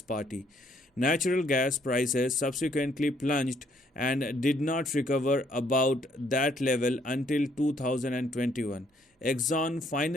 party. Natural gas prices subsequently plunged and did not recover about that level until 2021. Exxon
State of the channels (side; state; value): both; normal; correlation 0.68